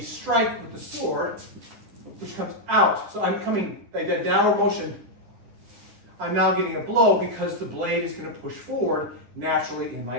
strike with the sword, which comes out. So I'm coming, like that downward motion, I'm now getting a blow because the blade is going to push forward naturally in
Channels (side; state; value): left; late; 10 ms